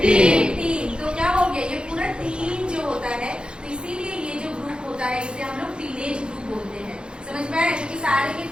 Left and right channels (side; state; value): left; late; 0.051 ms